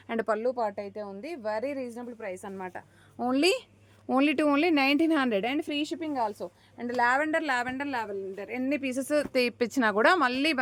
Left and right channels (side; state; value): both; identical; correlation 1.00